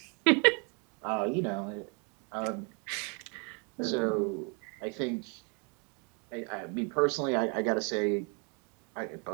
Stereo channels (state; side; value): quieter; left; 35.5 dB